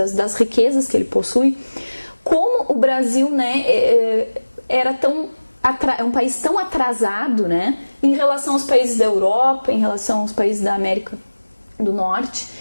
riquezas que ele possui, como o Brasil, né, é um país tão atrasado, né, em relação aos países da Europa, em relação aos países da América do Norte.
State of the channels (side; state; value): both; inverted; correlation -1.00